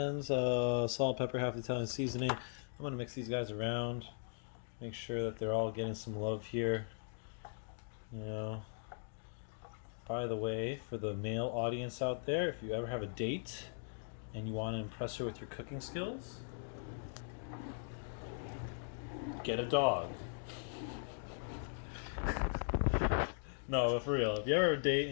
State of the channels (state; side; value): silent; right; digital silence